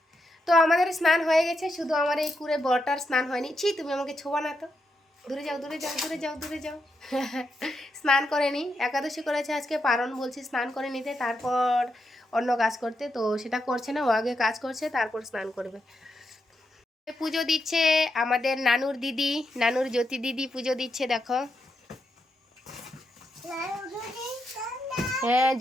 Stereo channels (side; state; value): both; normal; correlation 0.83